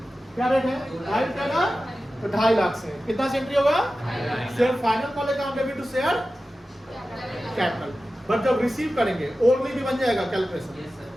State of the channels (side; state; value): both; normal; correlation 0.94